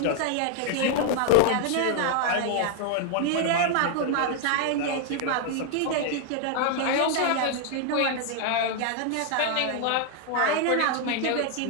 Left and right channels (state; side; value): different; both; correlation 0.00